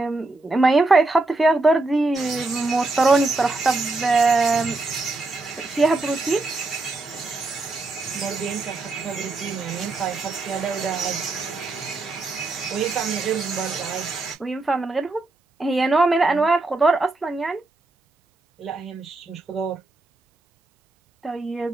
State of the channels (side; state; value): left; quieter; 3.3 dB